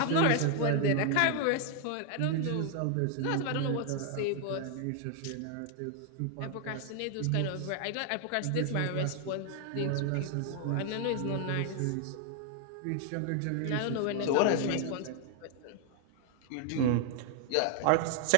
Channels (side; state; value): both; different; correlation 0.00